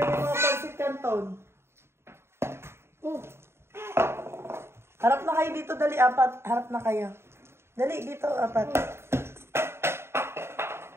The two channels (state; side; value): late; left; 0.12 ms